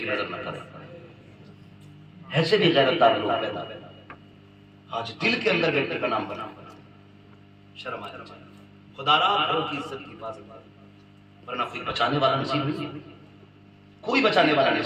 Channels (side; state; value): both; identical; correlation 1.00